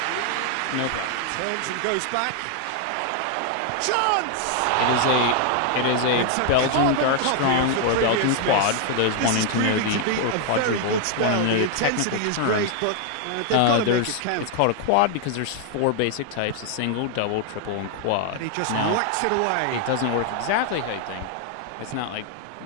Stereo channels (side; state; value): both; different; correlation 0.00